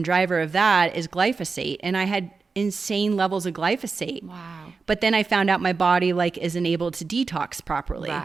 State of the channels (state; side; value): quieter; left; 4.5 dB